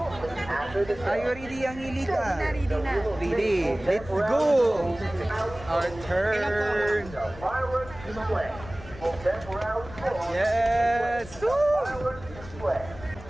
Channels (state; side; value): noise; left; rumble, 16 dB below the sound